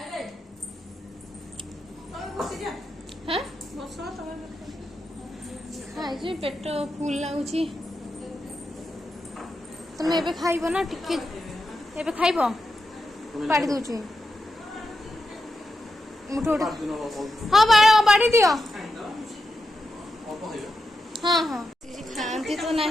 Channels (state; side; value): normal; both; correlation 0.88